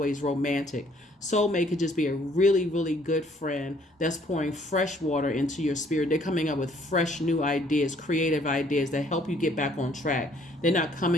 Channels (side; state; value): both; normal; correlation 0.62